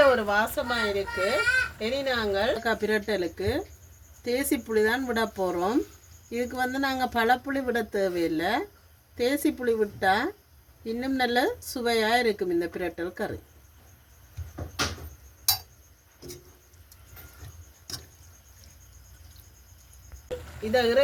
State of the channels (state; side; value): identical; both; correlation 1.00